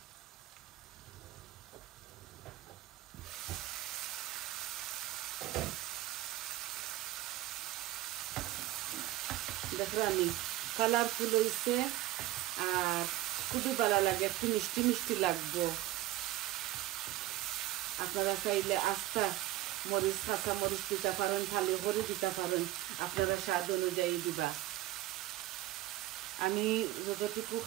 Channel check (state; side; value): quieter; left; 15.4 dB